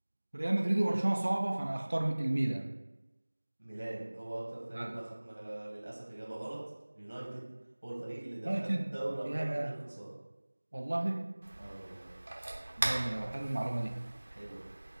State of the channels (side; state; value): both; inverted; correlation -1.00